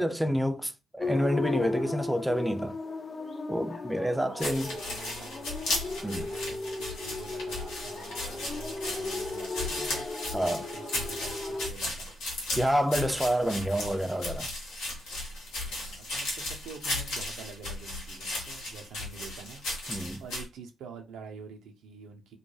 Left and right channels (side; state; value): both; normal; correlation 0.86